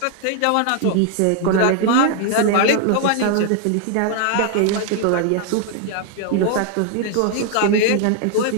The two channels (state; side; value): different; both; correlation 0.00